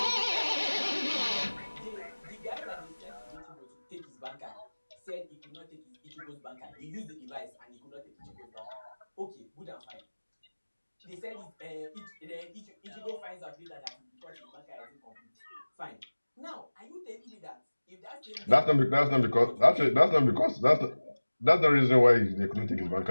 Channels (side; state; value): both; inverted; correlation -1.00